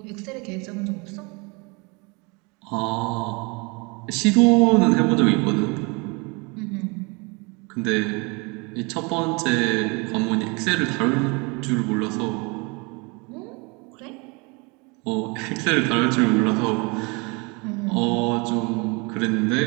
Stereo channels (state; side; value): quieter; left; 29.2 dB